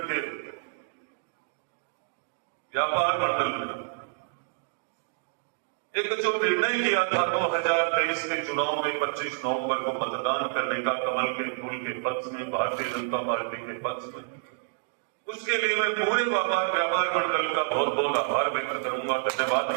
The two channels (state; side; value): silent; left; digital silence